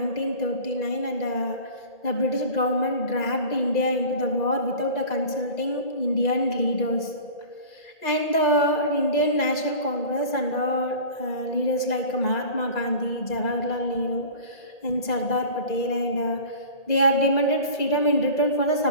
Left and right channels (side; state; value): right; late; 2.0 ms